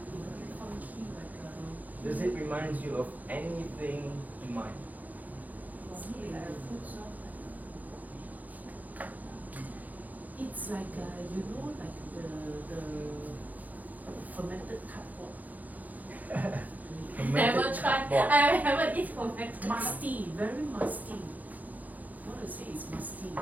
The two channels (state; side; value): late; left; 0.080 ms